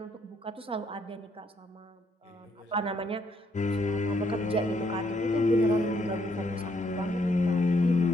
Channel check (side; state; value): both; normal; correlation 0.71